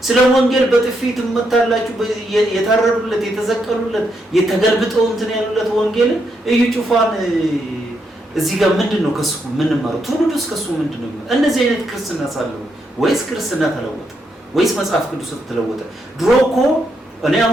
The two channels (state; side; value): normal; both; correlation 0.79